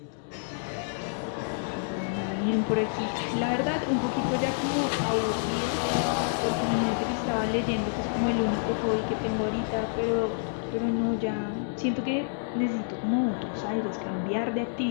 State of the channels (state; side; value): silent; right; digital silence